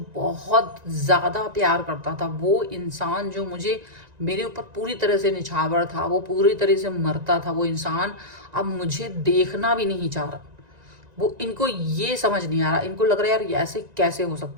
बहुत ज़्यादा प्यार करता था, वो इंसान जो मुझे मेरे ऊपर पूरी तरह से निछावर था, वो पूरी तरह से मरता था, वो इंसान अब मुझे देखना भी नहीं चाह रहा। वो इनको ये समझ नहीं आ रहा, इनको लग रहा है यार ऐसे कैसे हो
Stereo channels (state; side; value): late; left; 1.9 ms